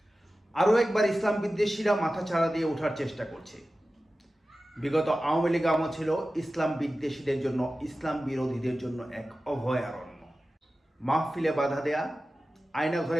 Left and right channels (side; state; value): both; normal; correlation 0.95